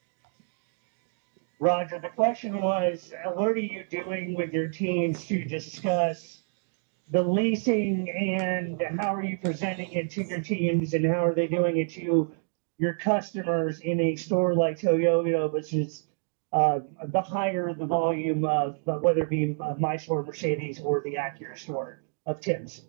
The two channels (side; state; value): left; silent; digital silence